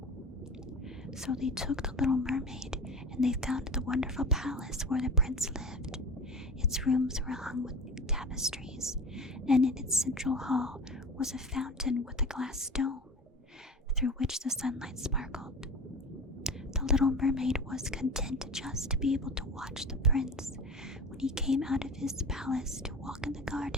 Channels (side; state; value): both; normal; correlation 0.33